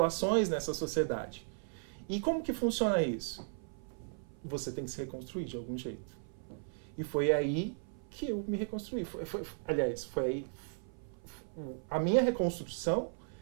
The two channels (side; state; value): left; silent; 54 dB below the other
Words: nessa sociedade. E como que funciona isso? Você tem que se reconstruir de algum jeito. E foi aí que eu me reconstruí. Aliás, foi aí... A minha reconstrução